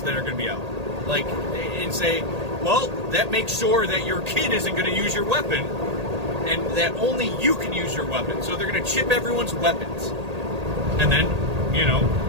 that are going to be out. Like, and say, well, that makes sure that your kid isn't going to use your weapon, and that only you can use your weapon. So they're going to chip everyone's weapons. And then, you know,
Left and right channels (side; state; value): left; late; 1.8 ms